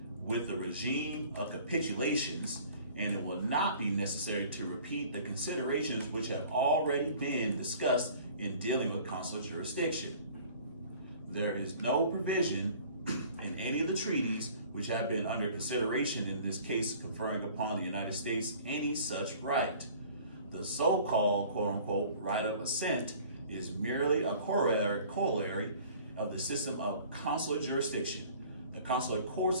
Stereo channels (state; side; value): inverted; both; correlation -0.49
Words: with the regime of capitulations, and it will not be necessary to repeat the considerations which have already been discussed in dealing with consular jurisdiction. There is no provision in any of the treaties which have been under consideration in this case conferring upon the United States any such right. The so-called, quote-unquote, right of assent is merely a corollary of the system of consular jurisdiction. The consular courts